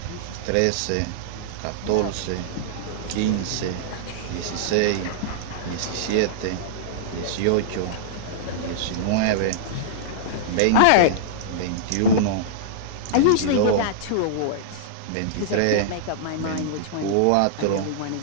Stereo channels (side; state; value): both; different; correlation -0.02